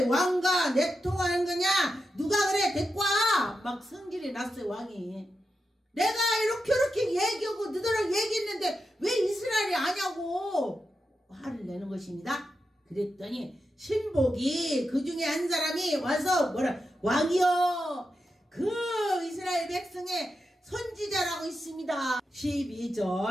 왕과 내통하는 거냐? 누가 그래? 데리고 와! 막 성질이 났어요. 왕이. 내가 이렇게 얘기하고 너희랑 얘기했는데 왜 이스라엘이 아냐고 화를 내는 것입니다. 그랬더니 신복이 그 중에 한 사람이 와서 왕이여 그 이스라엘 백성의 선지자라고 있습니다.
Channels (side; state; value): both; normal; correlation 0.88